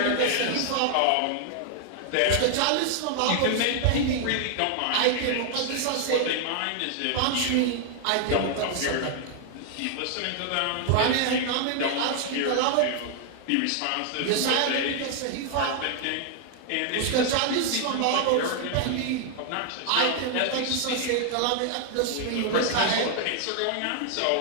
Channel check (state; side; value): different; both; correlation 0.00